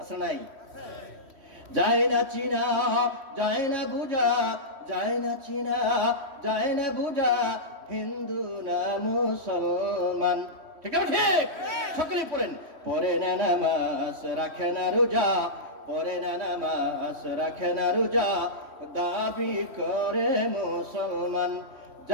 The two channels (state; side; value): late; left; 3.1 ms